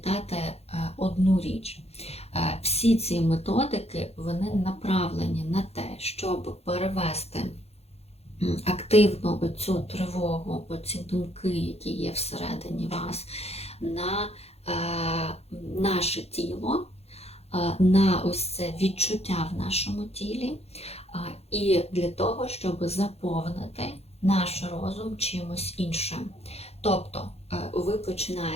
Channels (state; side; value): late; right; 0.30 ms